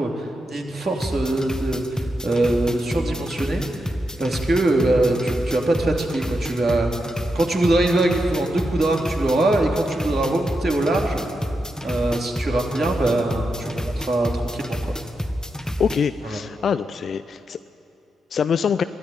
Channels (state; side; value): normal; both; correlation 0.86